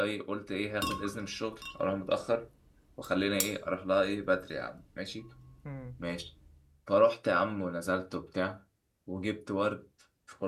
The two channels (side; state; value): both; identical; correlation 1.00